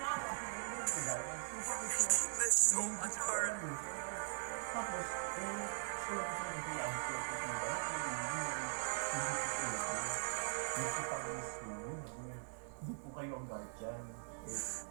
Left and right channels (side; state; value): left; silent; 50 dB below the other